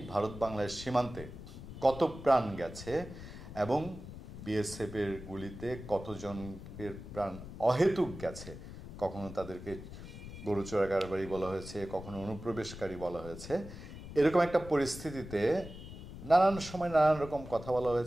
ভারত বাংলার সীমান্তে কত প্রাণ গেছে এবং বিএসএফের গুলিতে কতজনের প্রাণ অহেতুক গেছে। কখনো তাদেরকে গরু চোরাকারবারি বলা হয়েছে, কখনো অনুপ্রবেশকারী বলা হয়েছে। এরকম একটা পরিস্থিতিতে নানান সময় নানান রকম কথা বলা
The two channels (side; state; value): left; noise; rumble, 12 dB below the sound